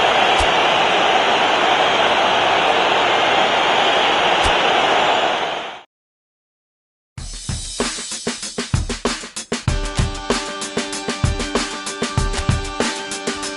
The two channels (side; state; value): both; identical; correlation 1.00